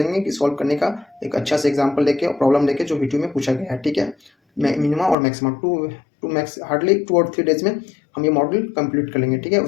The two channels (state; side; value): drops out; right; at 5.2 s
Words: कि सॉल्व करने का एक अच्छा सा एग्जांपल लेके और प्रॉब्लम लेके जो वीडियो में पूछा गया है, ठीक है। मिनिमा और मैक्सिमा हार्डली 2 और 3 डेज में हम ये मॉड्यूल कंप्लीट कर लेंगे, ठीक है।